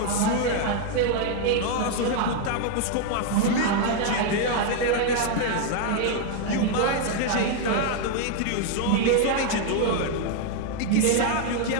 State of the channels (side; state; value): both; different; correlation 0.00